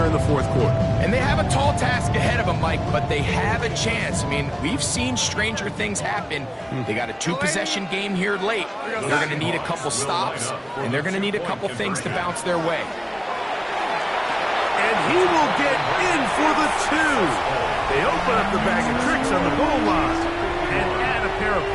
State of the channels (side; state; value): both; identical; correlation 1.00